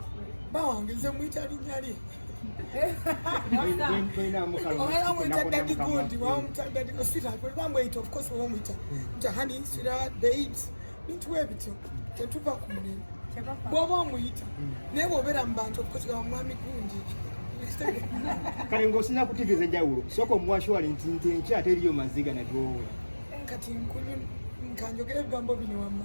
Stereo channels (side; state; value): both; inverted; correlation -1.00